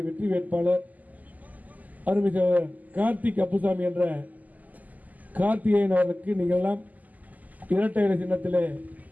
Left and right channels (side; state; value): left; late; 0.079 ms